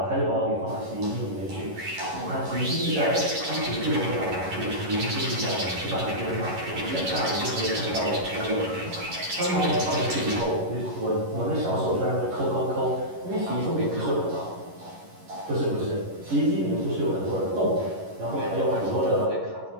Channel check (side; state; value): left; late; 11 ms